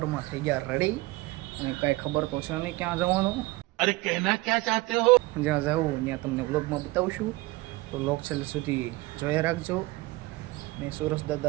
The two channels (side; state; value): left; quieter; 20.9 dB